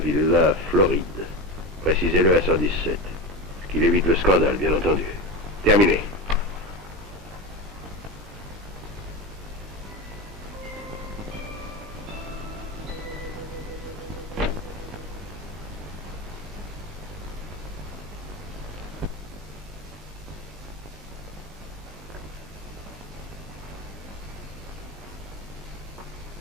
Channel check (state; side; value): normal; both; correlation 0.21